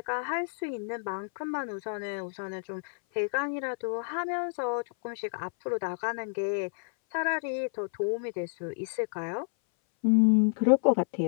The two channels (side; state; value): right; silent; 58 dB below the other